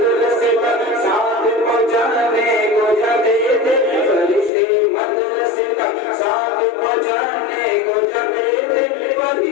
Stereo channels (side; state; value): right; drops out; at 4.5 s